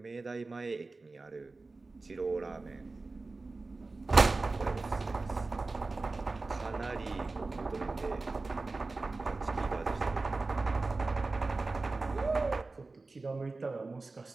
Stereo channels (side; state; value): left; quieter; 3.6 dB